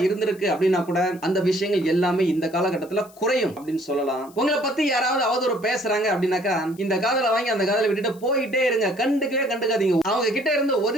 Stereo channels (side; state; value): left; noise; hiss, 25 dB below the sound